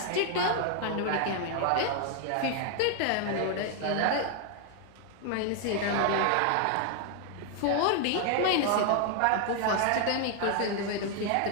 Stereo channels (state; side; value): different; both; correlation 0.00